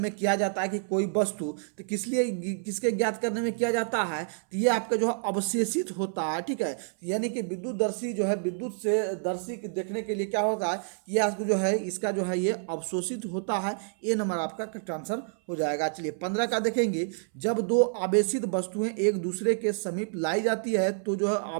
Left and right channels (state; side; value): silent; left; 59 dB below the other